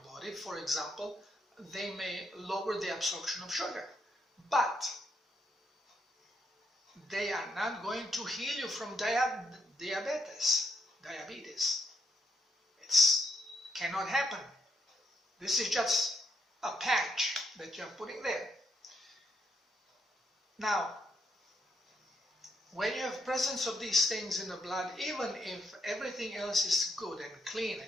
body. For example, they may lower the absorption of sugar, but they are not going to heal you from diabetes. It cannot happen. This is just a patch that you're putting there. Now, when you have presence of these things in the blood, even if everything else is good and clean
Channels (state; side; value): normal; both; correlation 0.76